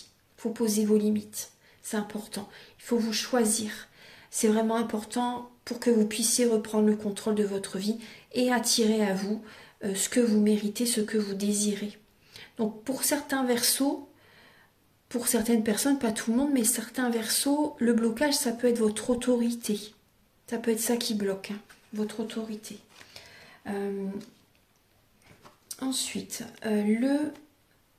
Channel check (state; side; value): identical; both; correlation 1.00